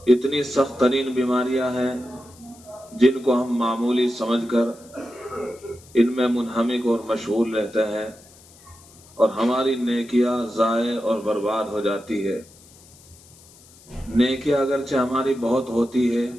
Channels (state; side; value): noise; left; hiss, 25 dB below the sound